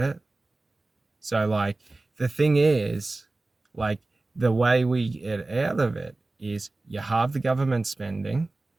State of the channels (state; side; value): quieter; left; 3.1 dB